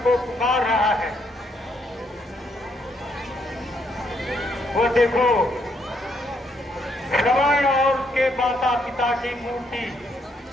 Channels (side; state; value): both; normal; correlation 0.73